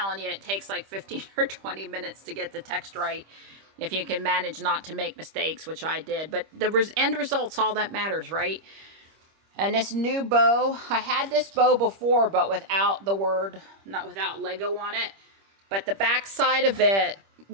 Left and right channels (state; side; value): late; left; 25 ms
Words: you, it takes like 15 or 20 minutes to get the text right, if you can manage not to make mistakes, which I did. But the end result's all that matters, right? And this new bow, I had this bow before, but without without Lego on it. But the back side of it